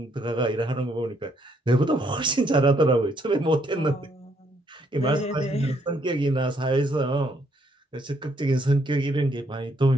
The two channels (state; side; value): normal; both; correlation 0.71